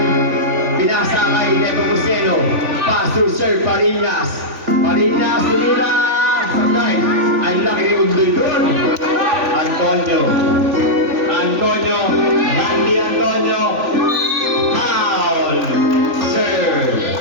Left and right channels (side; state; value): left; late; 3.5 ms